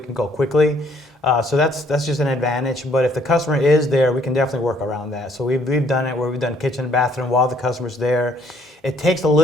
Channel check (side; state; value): both; normal; correlation 0.64